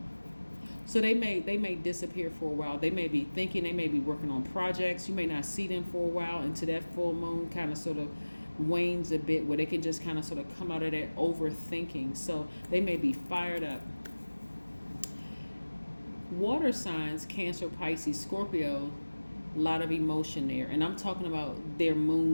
So they may disappear for a while. They may be thinking, they may be working on projects. You may not see them for a while until that full moon kind of sort of wanes a bit, where they can just kind of sort of come out of that overthinking. So they may be fired up Water signs, Cancer, Pisces, Scorpio, a lot of emotion there. And I'm talking about their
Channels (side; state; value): both; inverted; correlation -1.00